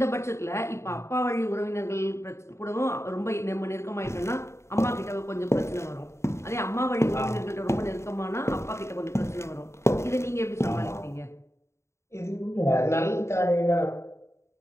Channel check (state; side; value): late; right; 0.13 ms